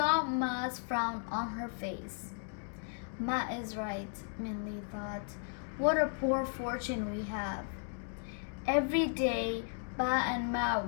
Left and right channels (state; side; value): silent; right; 54 dB below the other